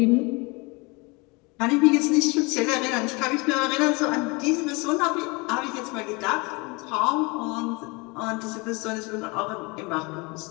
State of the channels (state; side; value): quieter; right; 27.4 dB